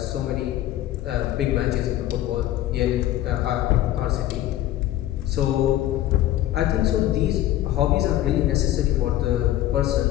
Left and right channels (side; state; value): right; quieter; 13.8 dB